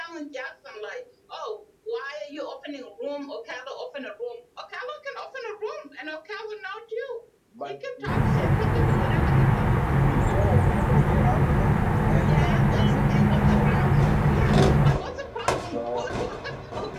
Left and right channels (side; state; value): both; identical; correlation 1.00